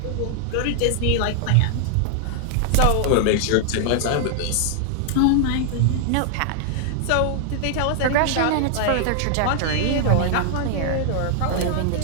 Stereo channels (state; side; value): different; both; correlation 0.00